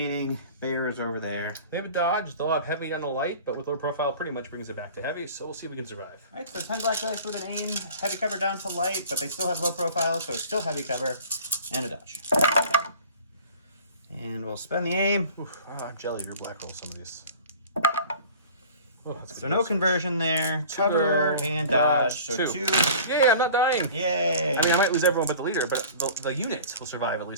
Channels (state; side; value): inverted; both; correlation -0.44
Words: bears over there. They have a dodge. They'll have heavy on the light, but with low profile, pretty much brings it back to heavy. So we'll see if we can survive. All right, so 10 black dice with an aim, heavy cover down to light, but they still have low profile, so it's still heavy cover, and a dodge. And we'll spend the aim. Oof, I'm jelly. Your black roll some of these. Oh, that's So no conversion there. Cover and dodge. So 2. Yay, I'm not dying. Yay. I mean, I might lose everyone but the leader, but the unit will survive, at